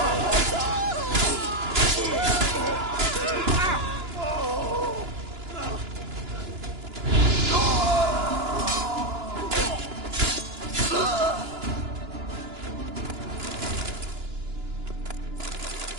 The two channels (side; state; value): left; late; 2.9 ms